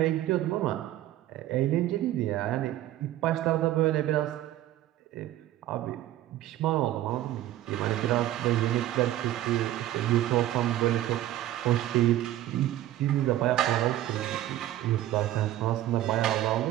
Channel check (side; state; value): left; quieter; 13.7 dB